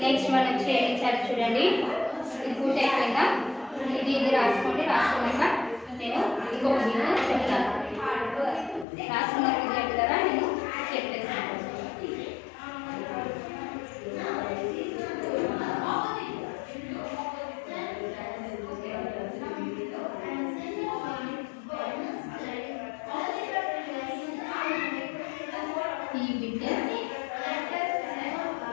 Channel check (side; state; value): right; drops out; at 8.8 s